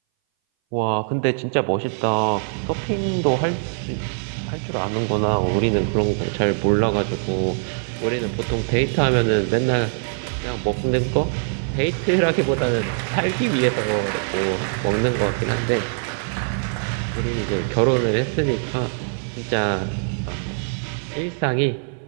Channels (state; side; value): silent; left; 60 dB below the other